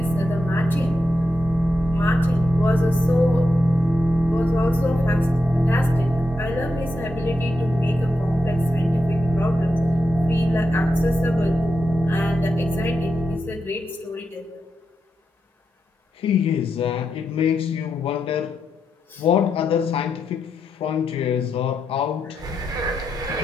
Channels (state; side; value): normal; both; correlation 0.86